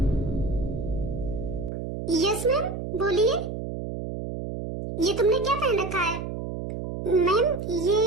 यस मैम, बोलिए। ये तुमने क्या पहन रखा है? मैम,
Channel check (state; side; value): noise; right; hum, 6 dB below the sound